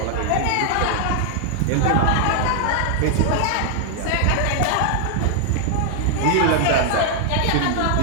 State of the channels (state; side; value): different; both; correlation 0.00